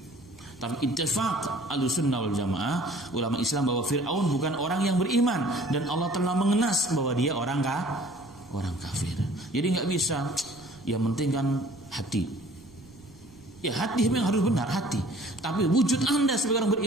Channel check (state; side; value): noise; right; rumble, 25 dB below the sound